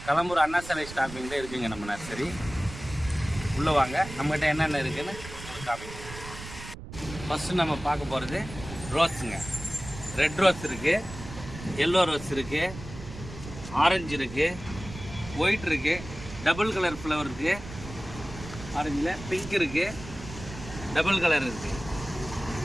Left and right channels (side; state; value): right; noise; rumble, 12 dB below the sound